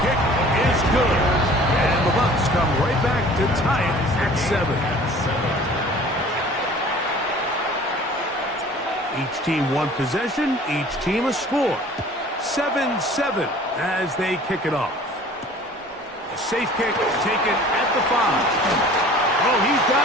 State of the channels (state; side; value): normal; both; correlation 0.48